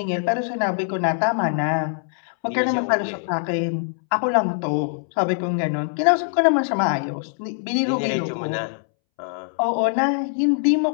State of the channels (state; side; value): silent; right; 64 dB below the other